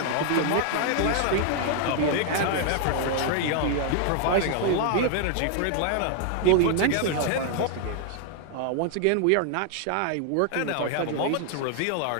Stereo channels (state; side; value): different; both; correlation 0.00